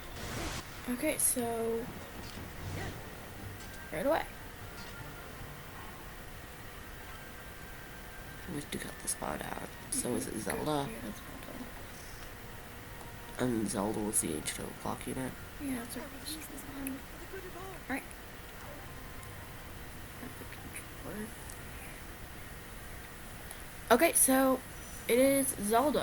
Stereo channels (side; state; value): both; identical; correlation 1.00